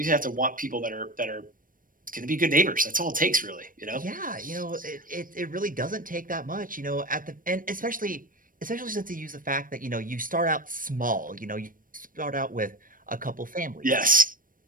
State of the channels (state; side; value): late; left; 0.40 ms